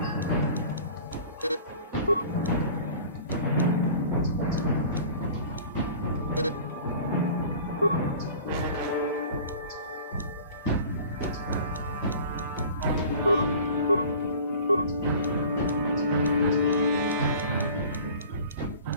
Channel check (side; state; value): both; inverted; correlation -0.43